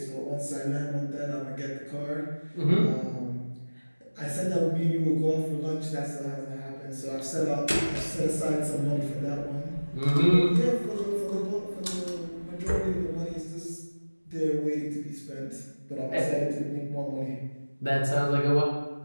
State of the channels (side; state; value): both; inverted; correlation -1.00